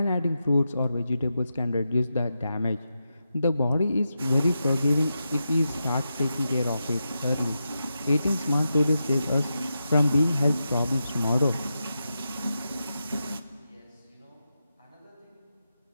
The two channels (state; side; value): inverted; both; correlation -0.88